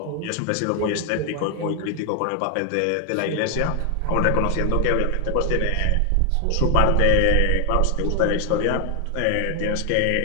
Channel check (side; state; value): both; different; correlation 0.00